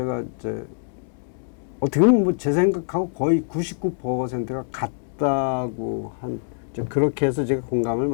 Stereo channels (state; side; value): silent; right; 63 dB below the other